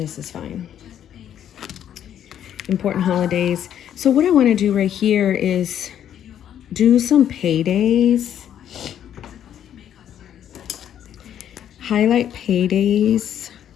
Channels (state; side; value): quieter; right; 10.1 dB